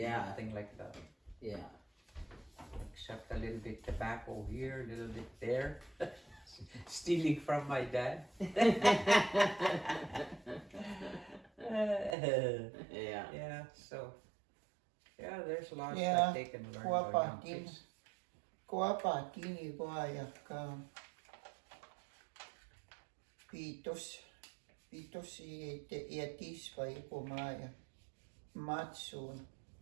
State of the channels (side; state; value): left; drops out; at 12.2 s